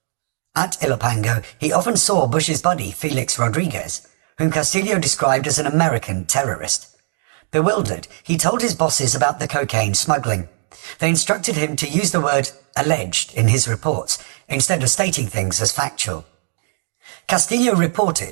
At Ilopango, he often saw Bush's buddy Felix Rodriguez, whom Castillo described as an American terrorist. Bewildered, he told his bosses about the cocaine smuggling. They instructed him to use the word alleged in his reports, instead of stating things as factual. Castillo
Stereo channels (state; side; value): silent; left; 65 dB below the other